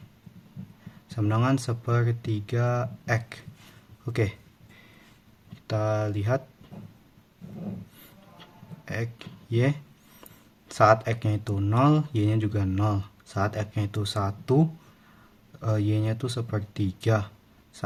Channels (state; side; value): identical; both; correlation 1.00